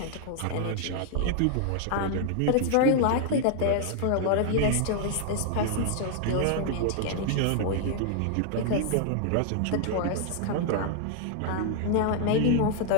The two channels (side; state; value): both; different; correlation 0.00